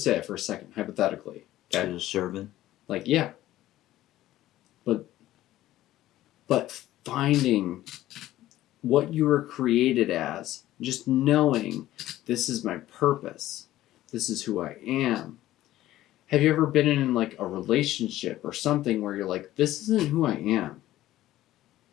for a second, hypothetically. Okay. She's a servant. Like, yeah. But finding what you were created as, just knowing this is my purpose, this is who I am. Have you ever been in, like, a relationship or something where you're like, this isn't who I am?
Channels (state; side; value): quieter; right; 14.7 dB